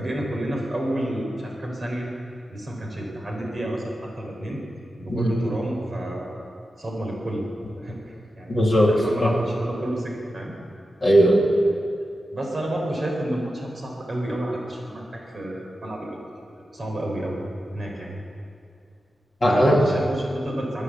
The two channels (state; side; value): normal; both; correlation 0.91